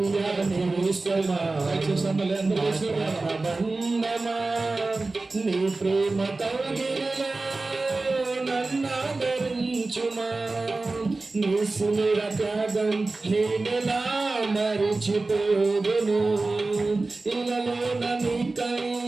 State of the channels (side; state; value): left; quieter; 3.4 dB